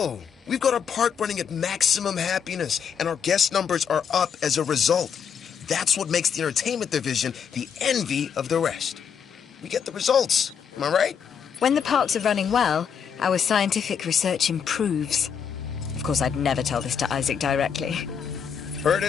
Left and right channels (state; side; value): quieter; right; 7.3 dB